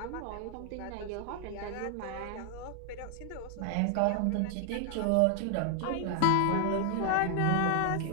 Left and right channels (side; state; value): both; different; correlation 0.00